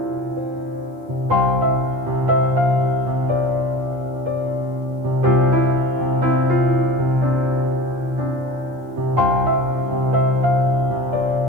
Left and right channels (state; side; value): late; left; 8.5 ms